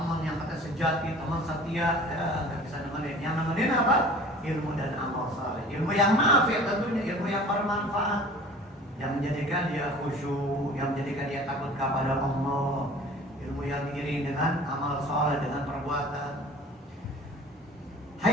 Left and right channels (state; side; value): normal; both; correlation 0.45